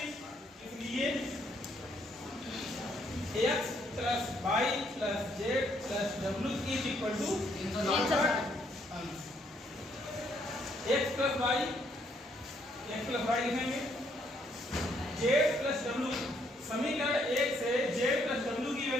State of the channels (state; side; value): normal; both; correlation 0.70